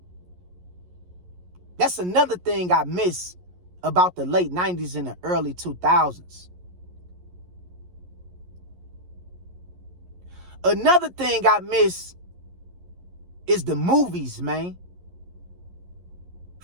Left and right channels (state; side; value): late; left; 11 ms